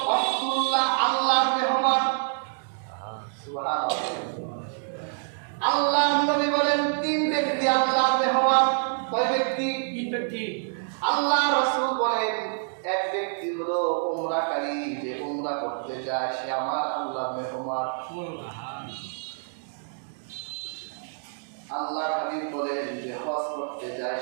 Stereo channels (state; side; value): silent; left; digital silence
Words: আব্দুল্লাহ আল্লাহর মেহমান। সুবহানাল্লাহ। আল্লাহর নবী বলেন তিন ব্যক্তি আল্লাহর মেহমান। কয় ব্যক্তি? তিন ব্যক্তি। আল্লাহ রাসূল বলেন এক ব্যক্তি হলো উমরাকারী, যে উমরা করতে যায় সে আমার আল্লাহর মেহমান। আল্লাহর হাবিব বলেন যে হজ করতে যায়